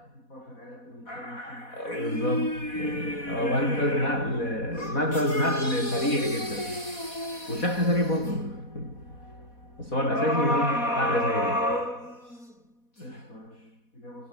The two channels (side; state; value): right; late; 4.1 ms